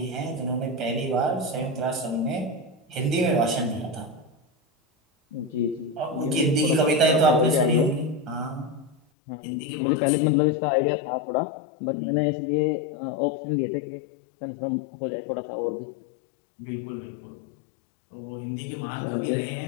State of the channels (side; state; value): right; drops out; at 9.0 s